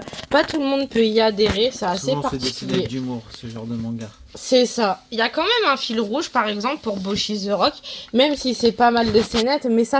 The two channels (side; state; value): both; identical; correlation 1.00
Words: pas tout le monde peut y adhérer, c'est assez Souvent, c'est dessiné avec particulier. d'humour, ce genre de manga. C'est ça. Il y a quand même un fil rouge, par exemple, pour Boshi the Rock, même si c'est pas mal de scénettes, mais